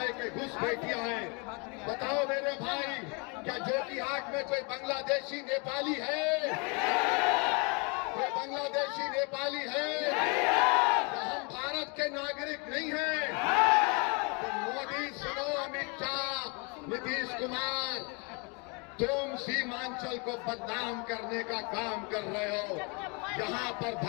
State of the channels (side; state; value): right; quieter; 32.5 dB